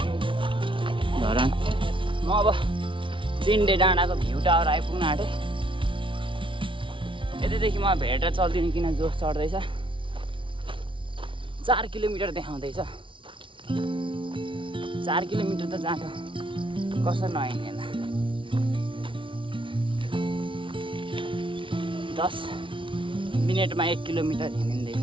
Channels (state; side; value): late; left; 0.25 ms